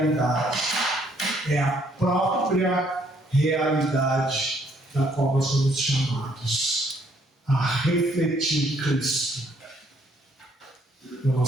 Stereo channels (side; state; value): both; normal; correlation 0.67